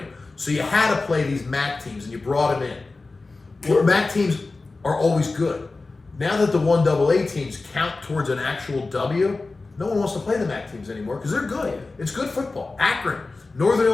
So you had to play these MAC teams, and you brought them in. Well, MAC teams are always good. Now that the 1AA teams count towards an actual W, no one wants to play the MAC teams anymore because they're good. It's good football. Akron, Northern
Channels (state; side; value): quieter; right; 3.6 dB